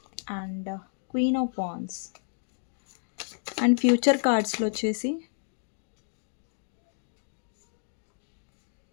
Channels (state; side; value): silent; right; digital silence